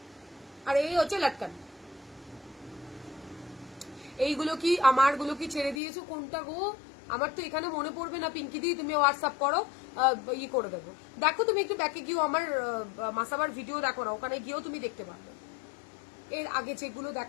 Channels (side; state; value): right; drops out; at 5.8 s